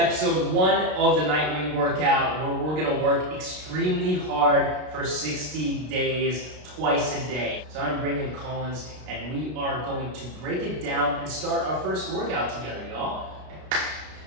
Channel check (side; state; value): left; late; 33 ms